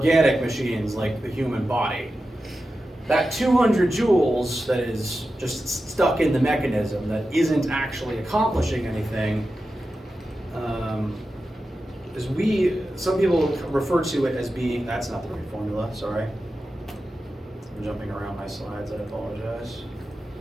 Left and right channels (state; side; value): normal; both; correlation 0.92